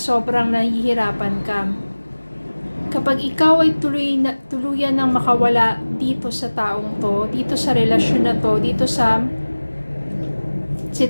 nahihirapan ka. Kapag ikaw ay tuluyan ng makawala dito sa taong to, dito sa relasyon na to, dito sa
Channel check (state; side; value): inverted; both; correlation -1.00